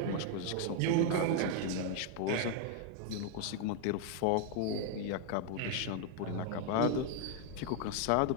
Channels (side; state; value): both; different; correlation 0.00